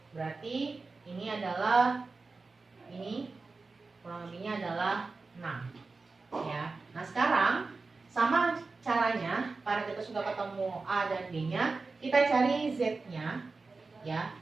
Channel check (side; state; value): left; quieter; 4.0 dB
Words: berarti ini adalah, ini kurang lebihnya adalah 6, ya. Nah sekarang sama caranya, karena kita sudah ketemu A dan B nya, kita cari Z nya, ya.